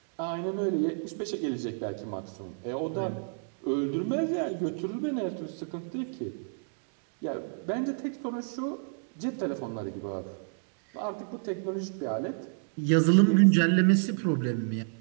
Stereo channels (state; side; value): silent; left; digital silence